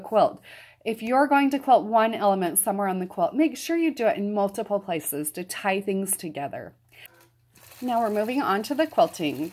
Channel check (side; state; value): both; identical; correlation 1.00